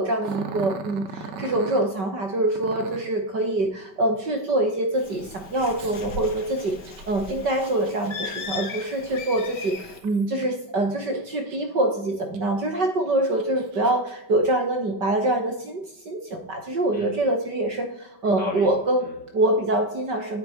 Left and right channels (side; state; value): left; late; 5.1 ms